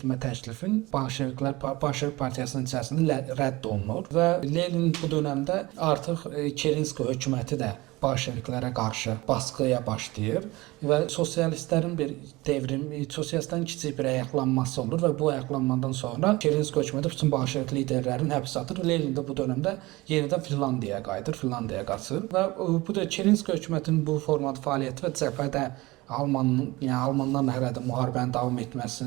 təklifin Bolşevik partiyasının içərisində rədd olunur və Lenin bu dövrdə artıq Kerenski hökuməti də Bolşeviklərə qarşı baskıya başlayır və sosialistlərin bir sosialistlərin kiçik bir ayaqlanması olur və bu ayaqlanmadan sonra Kerenski hökuməti bütün Bolşevik liderlərini həbsə atır. Lenin də bu dövrdə yenidən Finlandiyaya qayıdır, Finlandiyaya qaçır və bu da Kerenski hökumətinin bu formada fəaliyyəti və cəbhədə Almanlarla hələ də müharibənin davam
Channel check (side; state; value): left; quieter; 21.0 dB